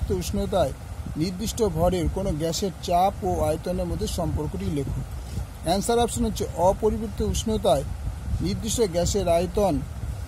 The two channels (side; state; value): both; identical; correlation 1.00